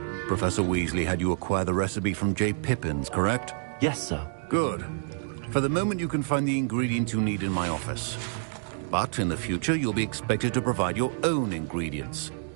Professor Weasley had you acquire the recipe from J. Pippins, correct? Yes, sir. Good. For the moment, you can find the ingredients you need in my office. But in the future, you'll be expected to provide your own ingredients.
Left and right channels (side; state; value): left; silent; digital silence